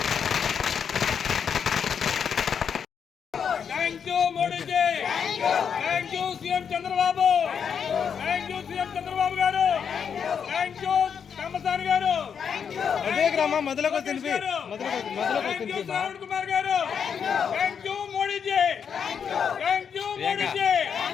CM Chandrababu thank you CM Chandrababu garu thank you Ramasani garu Shravan Kumar garu thank you Modiji thank you Modiji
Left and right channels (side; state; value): right; quieter; 7.2 dB